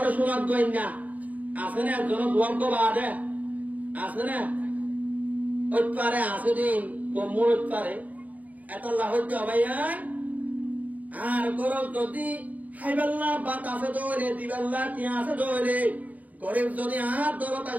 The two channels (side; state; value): left; late; 0.074 ms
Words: শোনাব দুনিয়া আছে না একজন দুয়াগ্য বাদে আছে না ওই পারে আছে দিন কমুর পারে এত লাহতে ভাইয়া আর গরব যদি হাইবাল্লা বাতাসে দৌড়ে দিবাল্লা টিয়াসে দৌড়ে গরিব যদি আর